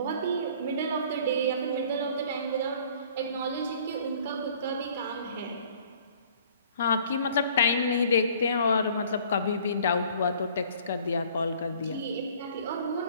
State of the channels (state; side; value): inverted; both; correlation -0.54